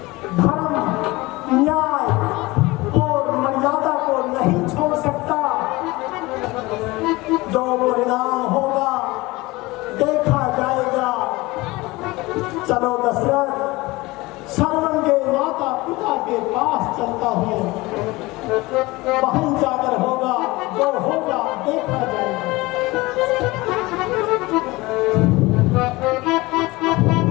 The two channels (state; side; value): quieter; right; 21.4 dB